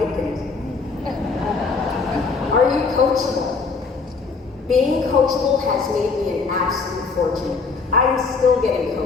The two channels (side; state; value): right; quieter; 4.6 dB